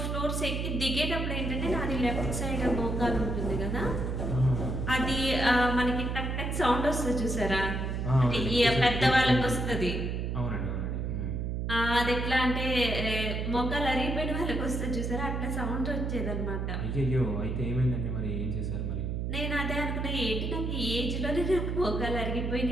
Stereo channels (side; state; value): right; noise; hum, 1 dB below the sound